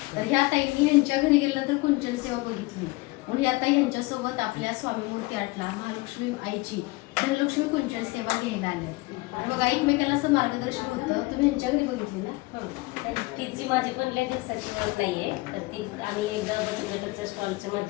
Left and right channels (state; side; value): quieter; right; 23.0 dB